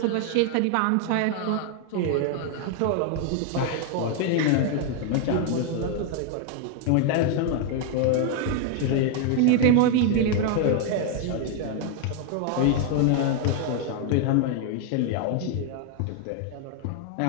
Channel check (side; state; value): both; different; correlation 0.00